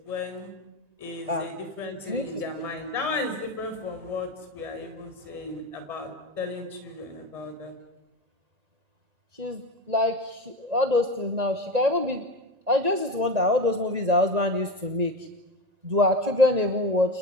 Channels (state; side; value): late; left; 1.9 ms